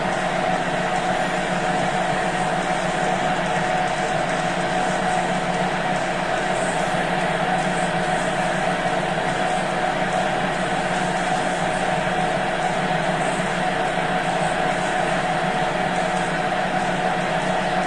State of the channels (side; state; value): both; identical; correlation 1.00